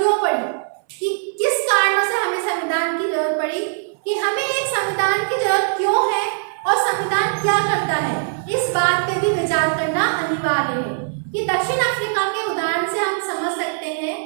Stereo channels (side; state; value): left; silent; 59 dB below the other